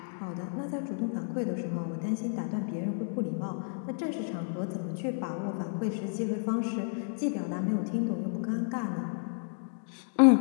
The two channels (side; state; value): right; silent; digital silence